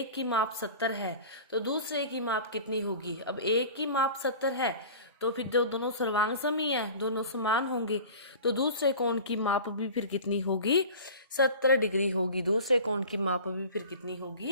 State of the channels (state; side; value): inverted; both; correlation -0.39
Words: की माप 70 है तो दूसरे की माप कितनी होगी। अब एक की माप 70 है तो फिर जो दोनों सर्वांग सम ही है, दोनों समान होंगे, तो दूसरे कोण की माप भी फिर कितनी होगी, 70 डिग्री होगी। दूसरे कोण की माप भी फिर कितनी